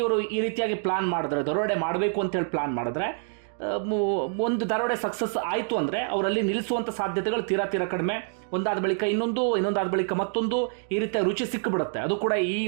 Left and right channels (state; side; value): silent; left; 60 dB below the other